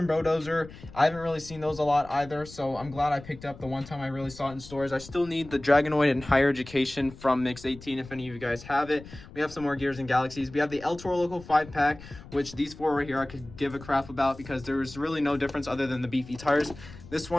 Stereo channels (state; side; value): noise; left; rumble, 17 dB below the sound